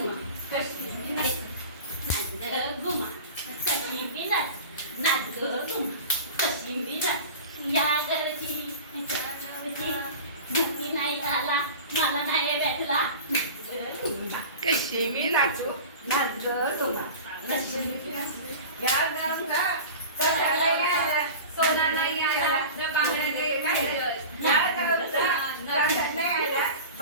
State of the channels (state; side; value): inverted; both; correlation -0.34